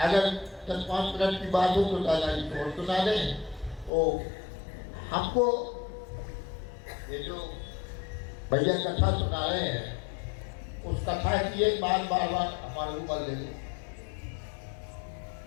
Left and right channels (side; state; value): right; drops out; at 3.9 s